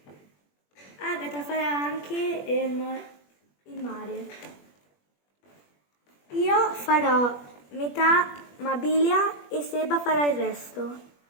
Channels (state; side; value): late; right; 21 ms